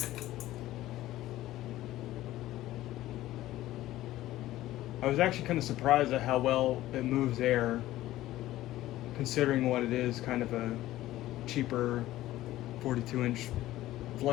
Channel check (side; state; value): right; quieter; 15.3 dB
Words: I was actually kind of surprised at how well it moves air, considering what it is, kind of a cheaper 42-inch